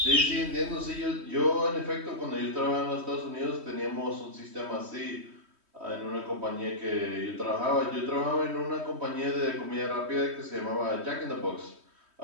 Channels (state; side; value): late; left; 3.2 ms